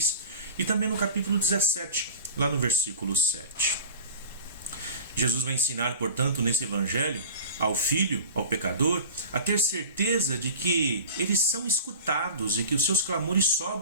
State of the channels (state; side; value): inverted; both; correlation -0.36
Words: e também no capítulo 17, lá no versículo 7. Jesus vai ensinar, portanto, nesse evangelho, ao filho, ao pecador, a ter certeza de que eles são escutados e que os seus clamores